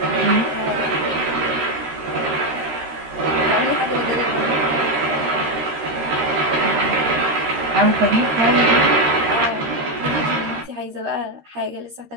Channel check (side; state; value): left; late; 13 ms